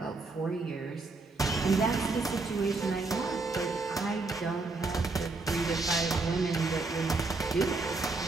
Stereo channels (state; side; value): quieter; left; 3.6 dB